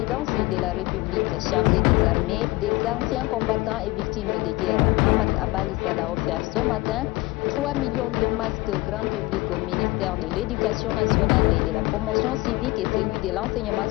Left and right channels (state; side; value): quieter; right; 21.3 dB